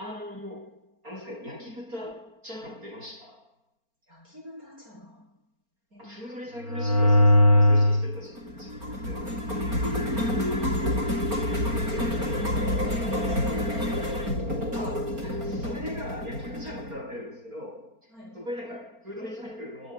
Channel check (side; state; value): left; late; 4.4 ms